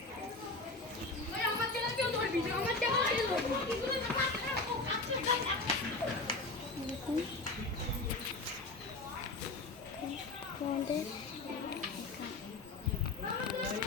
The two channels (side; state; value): right; quieter; 3.4 dB